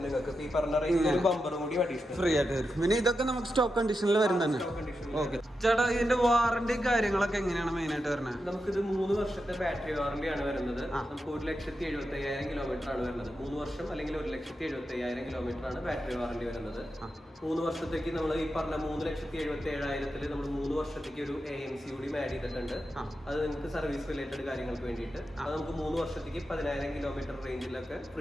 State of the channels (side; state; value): both; normal; correlation 0.88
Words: നിങ്ങൾക്ക് ഈ പറഞ്ഞ റേഞ്ചിൽ ബമ്പറും കൂടി അഡീഷണൽ ഫ്രീ ആയിട്ട് വരും. പിന്നെ ഇതൊക്കെ നമുക്ക് സ്റ്റോക്ക് കണ്ടീഷനിൽ വരുന്നതന്നെ. ഓക്കെ ചേട്ടാ, ഇതിന്റെ വാറന്റി കാര്യങ്ങളൊക്കെ എങ്ങനെയാണ് മെയിൻ ആയിട്ട് വരുന്നത്? നമുക്കിത് 3 വർഷത്തെ ബാറ്ററി വാറന്റി ആണ് വരുന്നത്. നമുക്ക് 1,75,000 കിലോമീറ്റർ ആണ് വരുന്നത്. 3 വർഷം അല്ലെങ്കിൽ 1,75,000 കിലോമീറ്റർ ആണ് ബാറ്ററി വാറണ്ടി വരുന്നത്. 3 വർഷത്തേക്ക് നമ്മൾ ഈ പറഞ്ഞ 3,77,000 നമ്മൾ 3 വർഷത്തേക്ക് ഒരു AMC കൂടി ആഡ് ചെയ്തിട്ടുണ്ട്. അത് നിങ്ങൾക്ക് സർവീസ് റിലേറ്റഡ് കാര്യങ്ങൾക്ക് വേണ്ടിയിട്ട് അത് നമുക്ക് 3 വർഷത്തേക്ക് 10,000 കിലോമീറ്റർ റേഞ്ചിലൊക്കെ